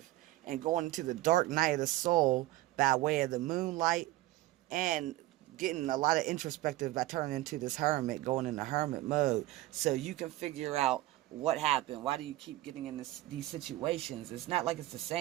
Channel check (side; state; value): left; quieter; 17.0 dB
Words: and going into the dark night of the soul by way of the moonlight, and getting a lot of introspective by turning into this hermit, going into hermit mode, so you can figure out what happened. Why do you keep getting in these situations? It's not like it's the